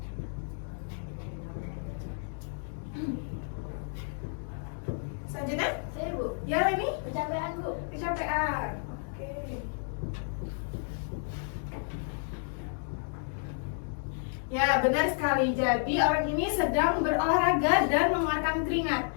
Selanjutnya, Saya, Bu. ya ini Kecapean, Bu. kecapean. Oke. Ya, benar sekali. Jadi orang ini sedang berolahraga dan mengeluarkan keringat.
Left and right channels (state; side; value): silent; right; 57 dB below the other